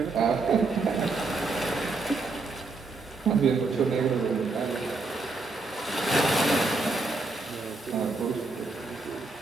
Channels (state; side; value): quieter; left; 3.6 dB